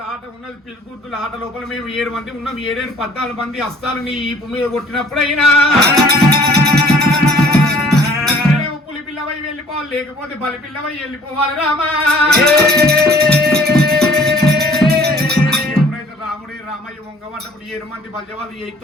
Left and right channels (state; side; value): normal; both; correlation 0.54